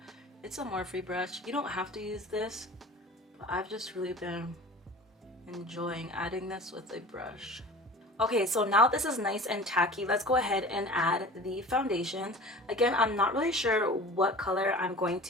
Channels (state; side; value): normal; both; correlation 0.40